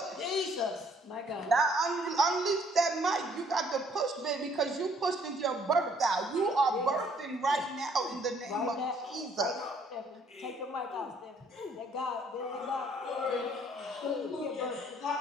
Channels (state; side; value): normal; both; correlation 0.62